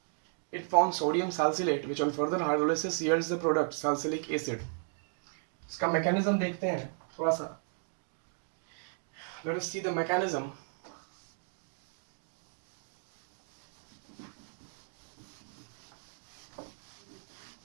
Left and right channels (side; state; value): left; silent; 55 dB below the other